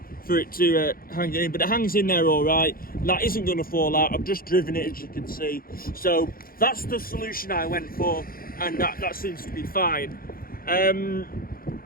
for it to hang in, but it hangs in there all right. That isn't going to fall out. I've just driven it, as you can see. So that's the solution I went for, and that seems to be fine.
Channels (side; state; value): right; late; 0.42 ms